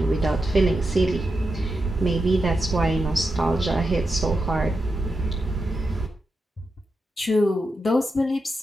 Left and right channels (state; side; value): normal; both; correlation 0.87